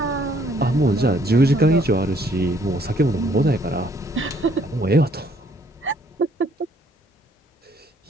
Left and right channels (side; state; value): both; normal; correlation 0.64